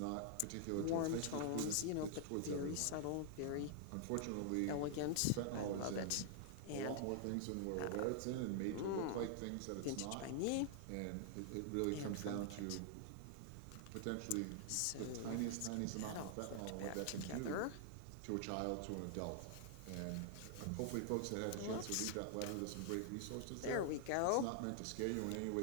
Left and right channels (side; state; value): both; different; correlation 0.00